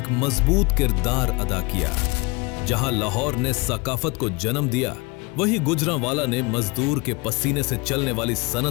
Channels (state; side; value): quieter; right; 27.1 dB